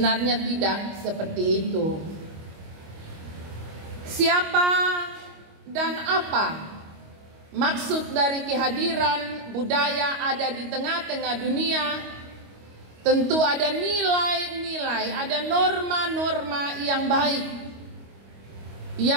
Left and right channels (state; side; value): late; left; 25 ms